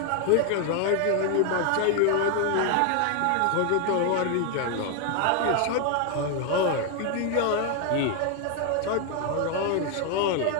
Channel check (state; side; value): different; both; correlation 0.01